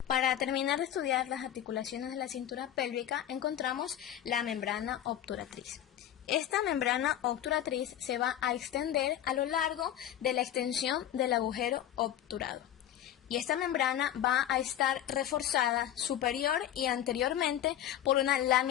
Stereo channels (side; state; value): right; quieter; 11.4 dB